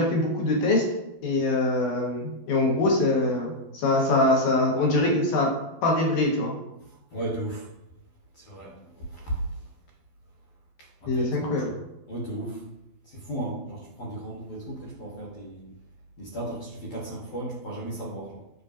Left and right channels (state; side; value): late; right; 12 ms